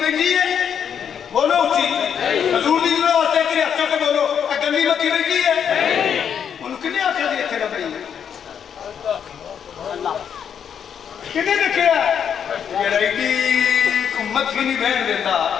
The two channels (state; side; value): quieter; right; 8.0 dB